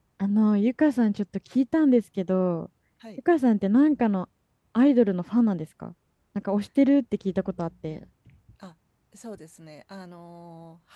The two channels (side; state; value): both; identical; correlation 1.00